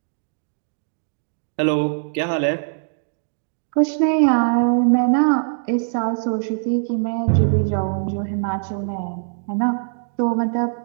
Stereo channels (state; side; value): silent; left; digital silence